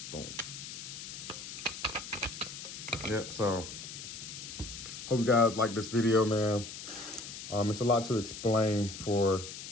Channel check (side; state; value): left; noise; hiss, 10 dB below the sound